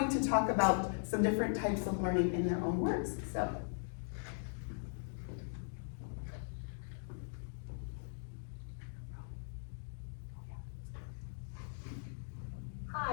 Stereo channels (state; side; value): silent; right; digital silence